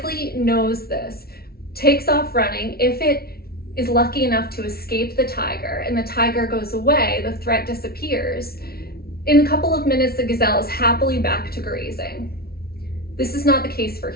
knows this, takes off running. If it is lucky enough to escape the tiger and the tiger goes away, the threat disappears. In a couple of minutes, the gazelle is happily back to grazing. This is not the case for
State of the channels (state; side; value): late; right; 0.44 ms